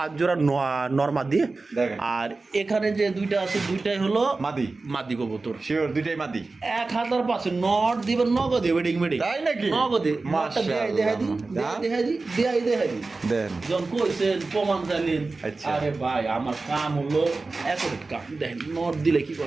জোড়া নরমা দিয়ে দেখেন। আর এখানে যে দুইটা আছে দুইটাই হলো মাদি মাদি কবুতর শিওর দুইটাই মাদি 1000% নট দিবেন নগদে ওয়েডিং মেডিং তাই নাকি? নগদে মাশাআল্লাহ। দেখাই দি দেন যখন কইছেন প্রমাণ চাইলেন আচ্ছা। আরে ভাই আমার কাম হলো এত কাম দেখেন নট দিলে কি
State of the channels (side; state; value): left; quieter; 3.7 dB